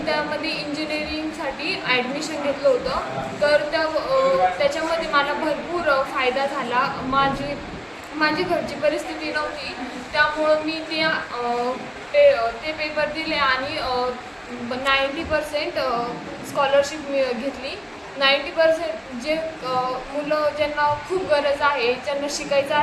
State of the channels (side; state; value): both; identical; correlation 1.00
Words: त्यामध्ये इंजिनिअरिंगसाठी ॲडमिशन घेतलं होतं। तर त्याच्यामध्ये मला भरपूर फायदा झाला। माझी घरची परिस्थिती नव्हती, त्यामुळं मी ते पेपर दिले आणि 90% स्कॉलरशिप घेतली। 90% जे मुलं ज्यांना खूप गरज आहे, ज्यांना शिकायचं